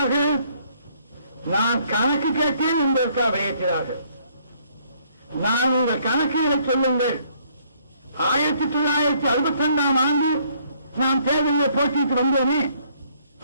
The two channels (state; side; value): inverted; both; correlation -0.65